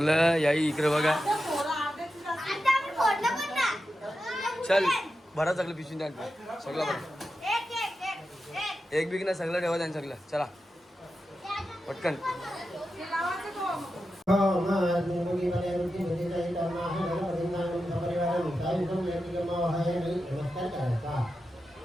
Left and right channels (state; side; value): normal; both; correlation 0.90